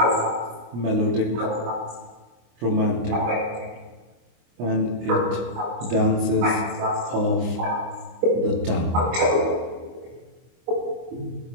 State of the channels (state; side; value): late; left; 25 ms